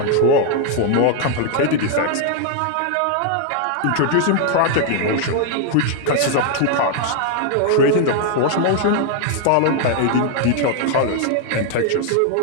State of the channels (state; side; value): different; both; correlation 0.00